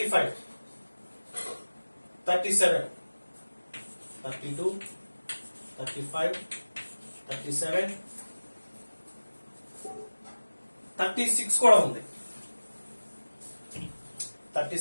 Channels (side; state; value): both; inverted; correlation -1.00